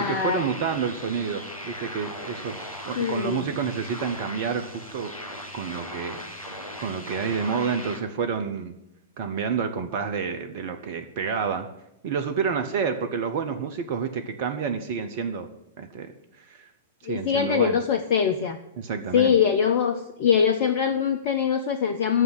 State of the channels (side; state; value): both; inverted; correlation -0.33